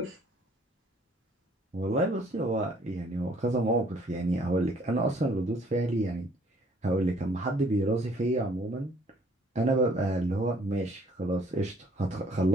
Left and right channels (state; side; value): normal; both; correlation 0.60